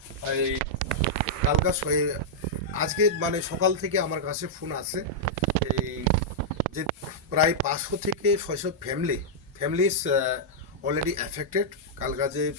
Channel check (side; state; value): both; normal; correlation -0.07